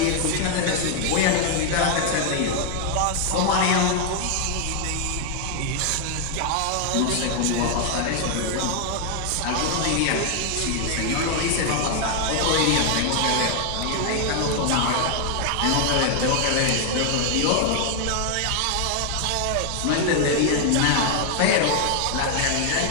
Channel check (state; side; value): different; both; correlation 0.00